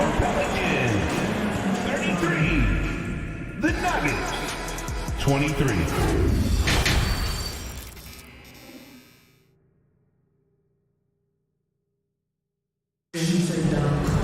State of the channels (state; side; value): identical; both; correlation 1.00